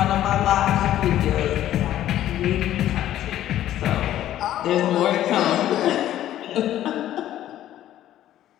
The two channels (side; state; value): right; quieter; 12.6 dB